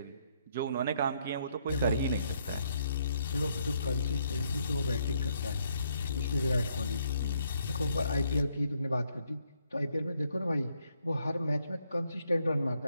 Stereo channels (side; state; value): both; inverted; correlation -0.72